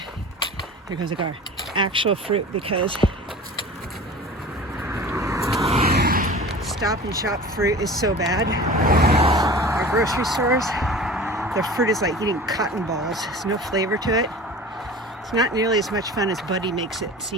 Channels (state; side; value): normal; both; correlation 0.38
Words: here goes a car, actual fruit because Stop and Shop fruit is so bad. Our grocery stores, the fruit is like eating cotton balls. There's no flavor to it. It's not nearly as much fun as Buddy makes it